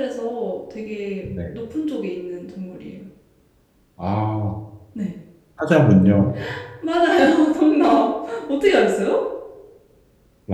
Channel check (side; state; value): both; identical; correlation 1.00